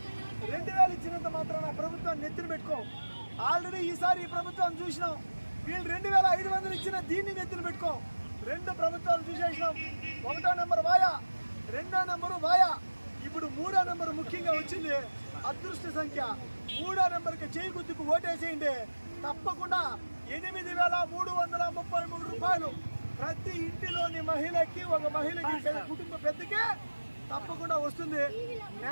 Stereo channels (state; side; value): inverted; both; correlation -1.00